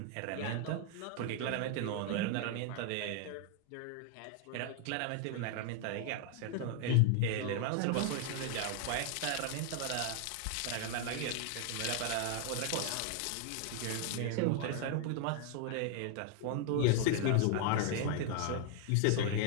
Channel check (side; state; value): both; different; correlation 0.00